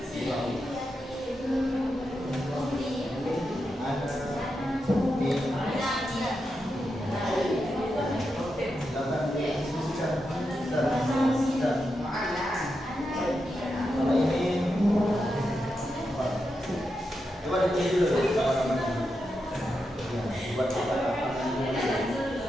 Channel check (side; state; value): both; normal; correlation 0.87